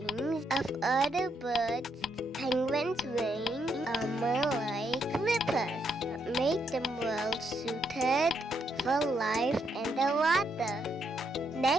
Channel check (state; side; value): normal; both; correlation 0.77